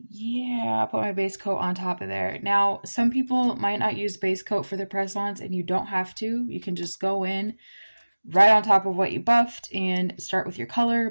yeah, I'll put my base coat on top of there. Now, some people might not use base coat for the press-ons, and you don't have to. You can just go in right on top of what you buffed and start with your color.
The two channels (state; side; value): inverted; both; correlation -1.00